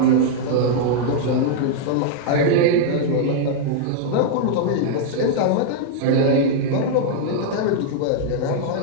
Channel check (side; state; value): both; different; correlation -0.01